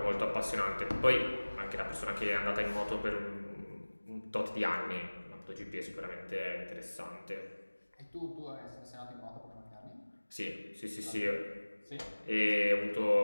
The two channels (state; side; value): inverted; both; correlation -1.00